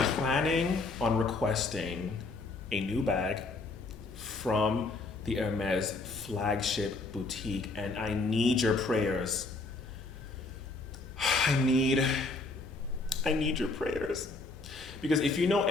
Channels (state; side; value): quieter; right; 3.5 dB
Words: planning on requesting a new bag from the Hermes flagship boutique, and I need your prayers. I need your prayers. Because if you know